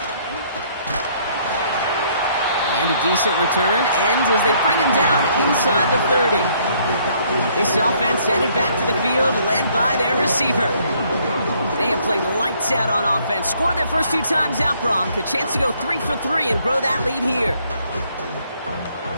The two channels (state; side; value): inverted; both; correlation -0.65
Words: And a decent return ends as they bring him down inside the 30. This offense headed back to the field, led by their receiver. They have played lights out on offense. Scored their first 2 times out, Bronk. A chance to go 3 for 3 and grow that lead here.